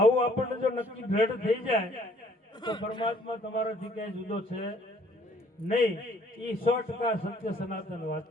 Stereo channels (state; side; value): normal; both; correlation 0.60